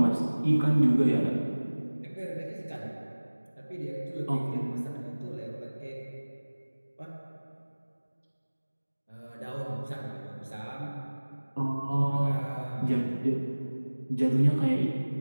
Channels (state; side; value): inverted; both; correlation -1.00